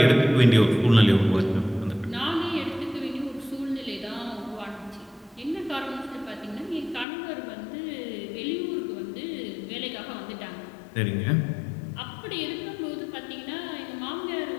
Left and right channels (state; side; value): drops out; right; at 7.1 s